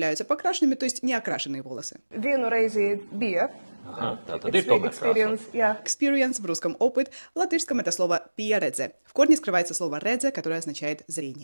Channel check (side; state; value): both; inverted; correlation -1.00